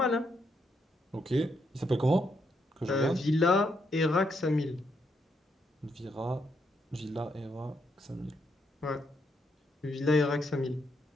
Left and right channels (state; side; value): normal; both; correlation 0.77